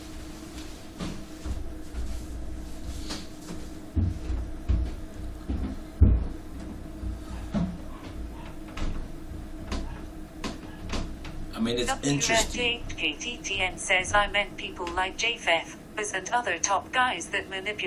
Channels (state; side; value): identical; both; correlation 1.00